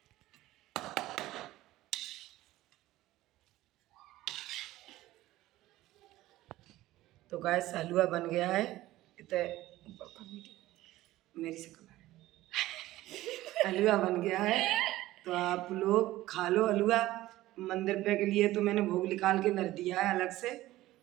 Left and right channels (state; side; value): quieter; left; 16.3 dB